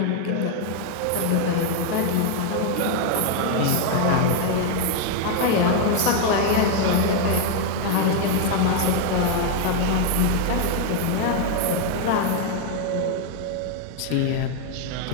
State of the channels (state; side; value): different; both; correlation 0.00